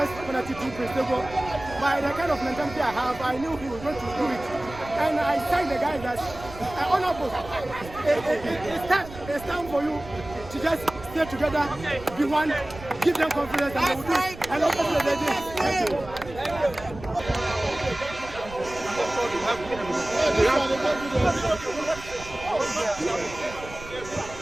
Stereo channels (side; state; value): right; noise; rumble, 15 dB below the sound